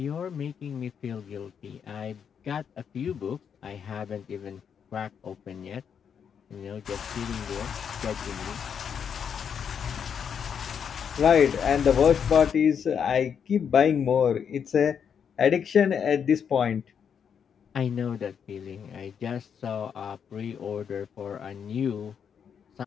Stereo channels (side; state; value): right; quieter; 7.4 dB